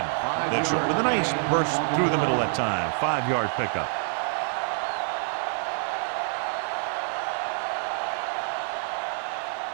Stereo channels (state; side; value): silent; left; 56 dB below the other